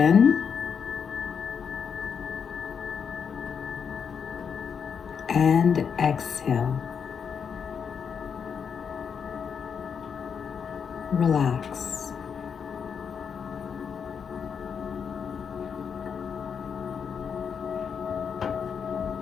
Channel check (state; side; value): quieter; right; 6.8 dB